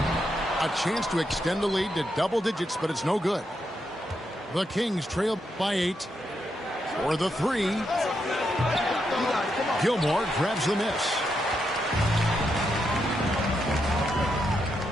A chance to extend the lead to double digits, but it's no good. The Kings trail by 8. For the 3. Gilmore grabs the miss.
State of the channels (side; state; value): both; normal; correlation 0.82